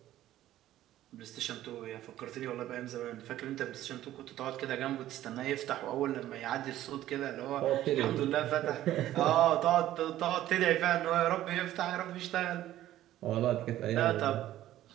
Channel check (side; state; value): left; quieter; 13.6 dB